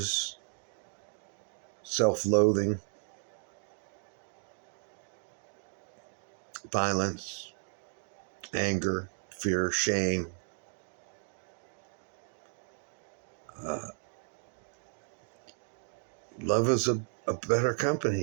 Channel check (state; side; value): silent; left; 55 dB below the other